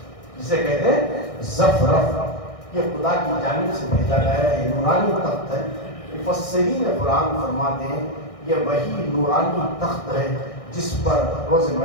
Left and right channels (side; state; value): right; late; 1.6 ms